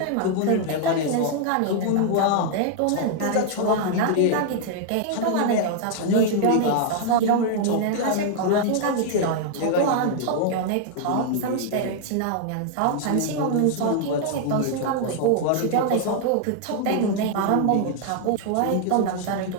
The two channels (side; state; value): both; different; correlation 0.00